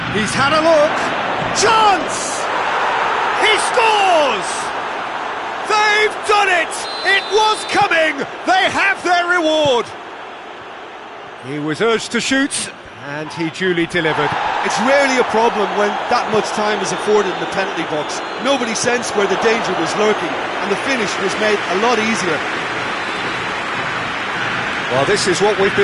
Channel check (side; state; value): both; identical; correlation 1.00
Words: He's had a look. Chance! He scores! They've done it! It was coming! They have their reward! He was urged to shoot, and he duly delivered. It's rarely a problem when that much time is afforded in the penalty box. Nobody sensed where the danger was lurking, and the finish was made a lot easier. Well, this is what we've